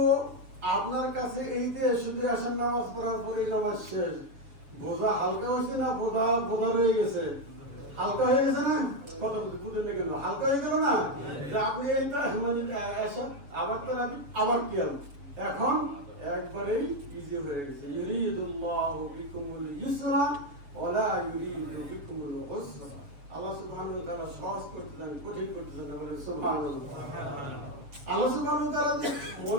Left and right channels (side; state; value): left; late; 7.0 ms